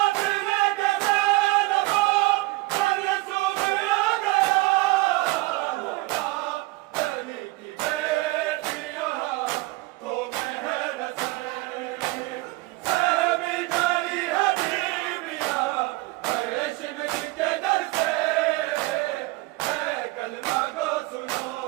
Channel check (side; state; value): left; quieter; 21.3 dB